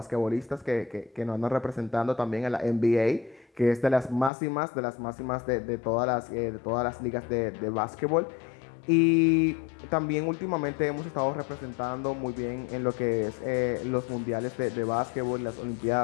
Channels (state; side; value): drops out; right; at 4.3 s